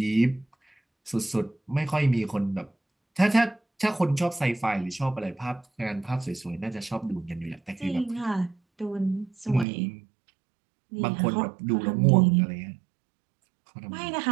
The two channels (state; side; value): drops out; left; at 9.7 s